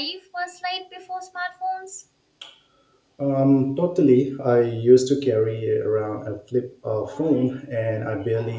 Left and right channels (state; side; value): identical; both; correlation 1.00